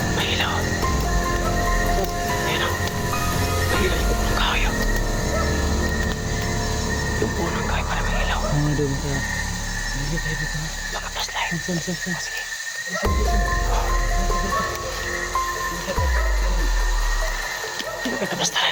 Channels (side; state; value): both; identical; correlation 1.00